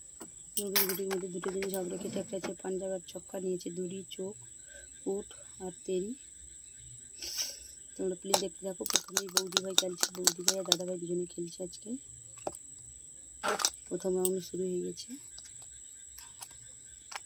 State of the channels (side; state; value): both; identical; correlation 1.00